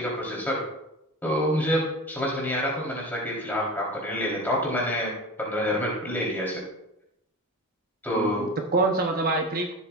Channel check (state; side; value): normal; both; correlation 0.30